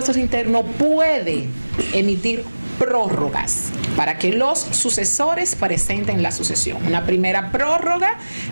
Internos puede emitir prórrogas para que los sucesores presenten la sucesión. Una primera prórroga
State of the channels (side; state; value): both; inverted; correlation -1.00